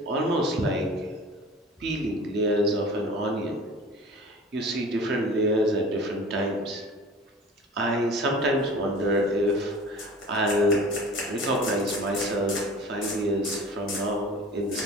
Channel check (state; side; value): normal; both; correlation 0.41